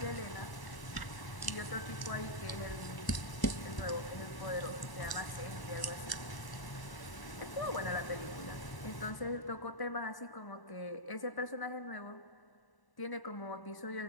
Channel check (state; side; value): late; right; 1.0 ms